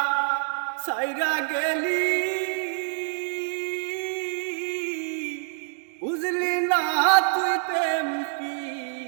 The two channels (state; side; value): silent; left; 59 dB below the other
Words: সাইরা গেলি বুঝলি না তুই প্রেম